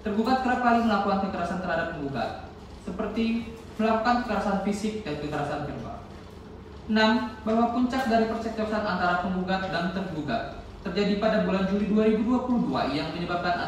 tergugat kerap kali melakukan kekerasan terhadap penggugat, seperti melakukan kekerasan fisik dan kekerasan verbal. 6. Bahwa puncak dari percekcokan antara penggugat dan tergugat terjadi pada bulan Juli 2022 yang menyebabkan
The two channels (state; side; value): identical; both; correlation 1.00